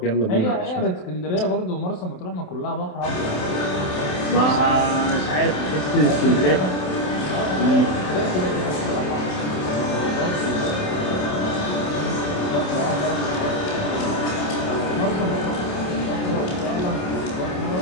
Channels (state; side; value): late; right; 27 ms